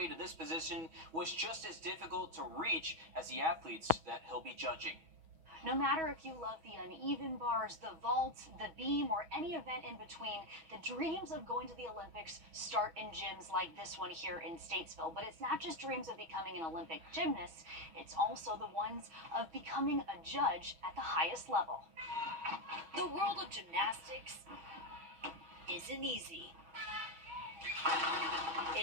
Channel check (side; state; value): left; late; 6.2 ms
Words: to this position was just as difficult to reach as the athletes that he'll be judging. No matter if you love the uneven bars, the vault, the beam, or any event in between, the dreams of going to the Olympics start in gyms like this one here in Statesville. But it's not just dreams of becoming an Olympic gymnast, it's also the ones of becoming a judge at the highest level. The world of gymnastics isn't easy.